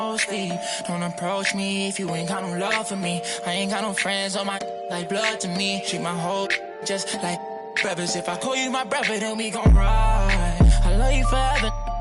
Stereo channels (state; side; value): identical; both; correlation 1.00